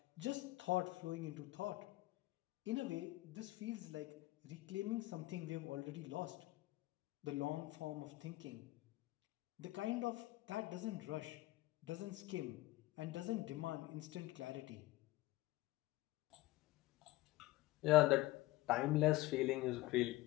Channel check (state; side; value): quieter; right; 18.1 dB